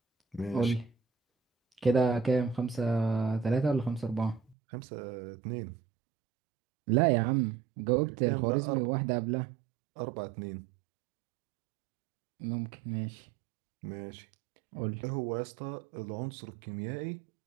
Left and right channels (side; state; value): left; drops out; at 4.5 s